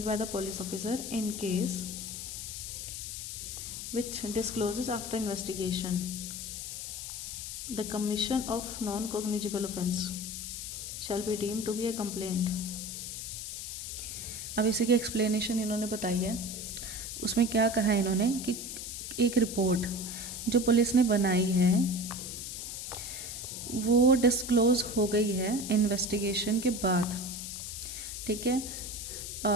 by the police officer in case which discloses after investigation the commission of non-cognizable offense shall be deemed to be a complaint. अब इसी की एक्सप्लेनेशन इन्होंने बताई है। उसमें क्या कहा है इन्होंने कि एक रिपोर्ट जो पुलिस ने बनाई है वो डिस्क्लोज हो गई है इन्वेस्टिगेशन के बाद, ठीक है,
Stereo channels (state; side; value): noise; left; hiss, 7 dB below the sound